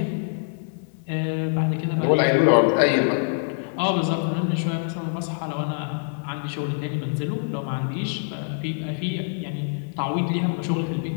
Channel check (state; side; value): silent; right; 58 dB below the other